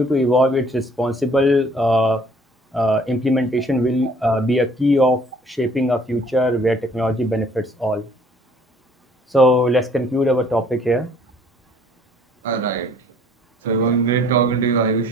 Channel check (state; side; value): normal; both; correlation 0.57